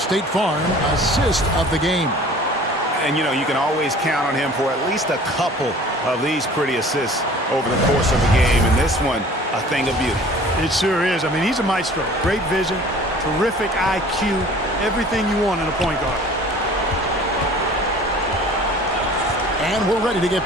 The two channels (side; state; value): both; normal; correlation 0.47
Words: Farm assist of the game. And, you know, you can always count on him for at least a couple of these pretty assists over the course of the game. And this one, a thing of beauty. It sure is. I mean, he's a maestro. Great vision, terrific IQ, everything you want in a point guard. And we're ready to get